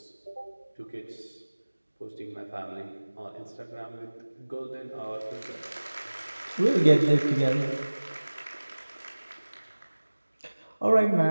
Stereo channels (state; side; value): inverted; both; correlation -1.00